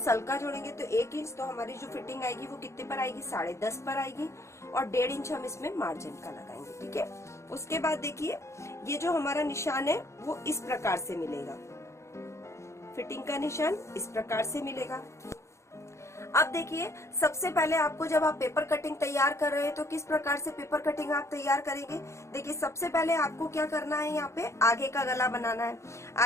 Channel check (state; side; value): late; right; 0.14 ms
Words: जोड़ेंगे तो 1 इंच। तो हमारी जो फिटिंग आएगी वो कितने पर आएगी, 10.5 पर आएगी, और 1.5 इंच हम इसमें मार्जिन का लगाएंगे। ठीक है, उसके बाद देखिए, ये जो हमारा निशान है वो इस प्रकार से मिलेगा, फिटिंग का निशान इस प्रकार से मिलेगा। अब देखिए, सबसे पहले आपको जब आप पेपर कटिंग तैयार कर रहे हैं तो किस प्रकार से पेपर कटिंग आप तैयार करेंगे। देखिए, सबसे पहले आपको क्या करना है, यहाँ पे आगे का गला बनाना है।